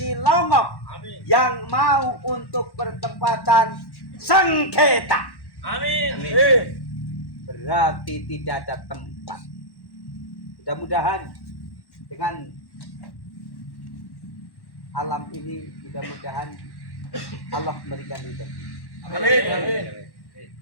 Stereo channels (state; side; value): late; right; 1.1 ms